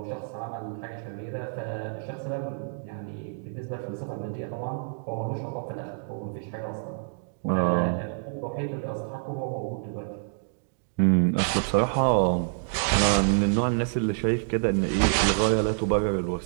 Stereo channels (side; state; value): left; silent; digital silence